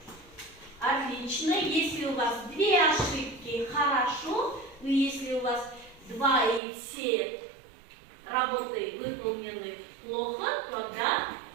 отлично. Если у вас две ошибки, хорошо. Но если у вас два и все работы выполнены плохо, тогда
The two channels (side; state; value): left; drops out; at 6.6 s